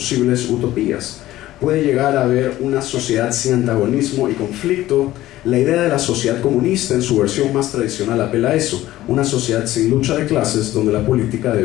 utopías. Puede llegar a haber una sociedad sin antagonismo y conflicto. La idea de la sociedad comunista en su versión más tradicional apela a eso, una sociedad sin lucha de clases donde la política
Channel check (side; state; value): right; quieter; 15.3 dB